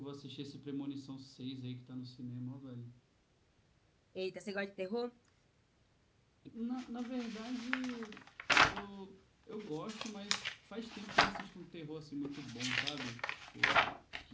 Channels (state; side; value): identical; both; correlation 1.00